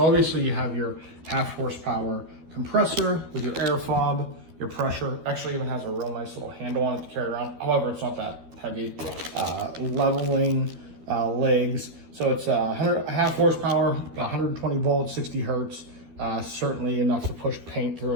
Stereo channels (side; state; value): left; late; 13 ms